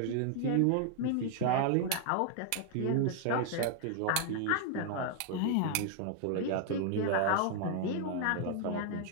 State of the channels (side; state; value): both; different; correlation 0.00